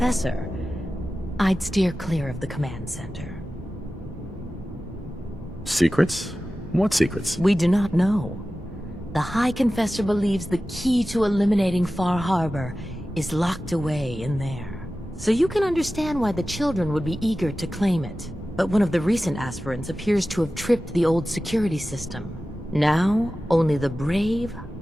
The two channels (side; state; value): both; normal; correlation 0.95